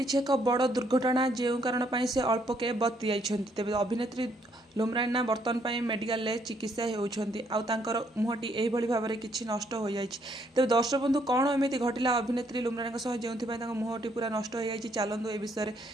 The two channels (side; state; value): both; normal; correlation 0.70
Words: एक बड़ दुर्घटना जो कारण से अल्पके बति जाइछन्ति। तेबे अभिनेत्री लुम्रान बर्तमान मेडिकल चिकित्सा होउछन्ति आउ तांकर मुहटी एही भली भाबरे किछि नष्ट हो जाइछि। तेबे दर्शक बंधु कोन एमिति घटिला अभिनेत्री लुम्रान जोंथिपाई तांकर मुहटी पूरा नष्ट हो जाइछि चलंतु ए विषय